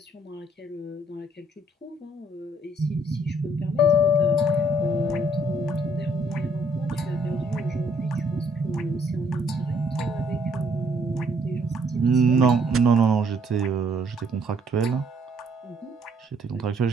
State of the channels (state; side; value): normal; both; correlation 0.65